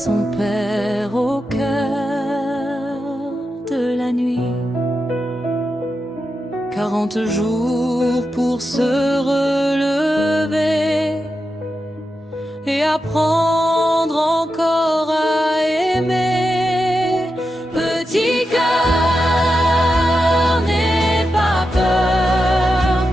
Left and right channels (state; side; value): normal; both; correlation 0.88